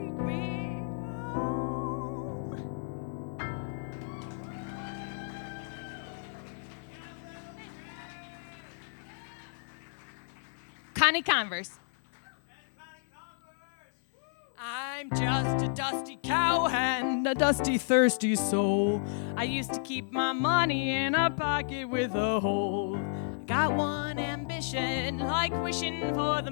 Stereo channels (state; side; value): silent; right; 57 dB below the other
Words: me home. Connie Converse. I'm just a dusty cowhand, a dusty, thirsty soul. I used to keep my money in a pocket with a hole. I got one ambition, like wishing for the